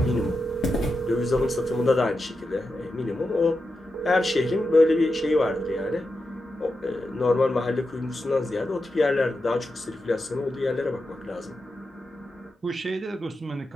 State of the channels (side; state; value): both; normal; correlation 0.89